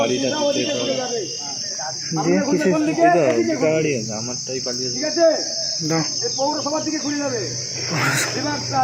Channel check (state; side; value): identical; both; correlation 1.00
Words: ওদিকে চলে যাবে। ঠিক আছে, এই পৌরসভার দিকে ঘুরে যাবে। এবার